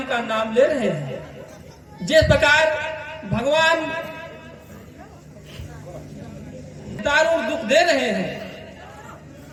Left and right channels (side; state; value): both; identical; correlation 1.00